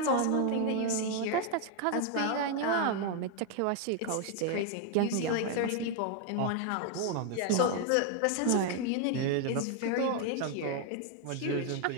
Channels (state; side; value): different; both; correlation 0.01